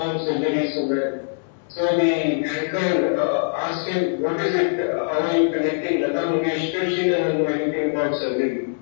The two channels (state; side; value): silent; right; digital silence